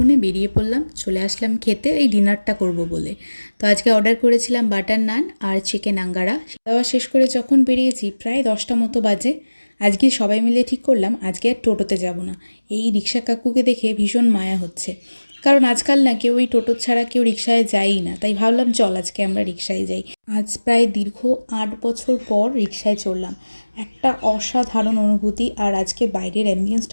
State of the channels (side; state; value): both; inverted; correlation -1.00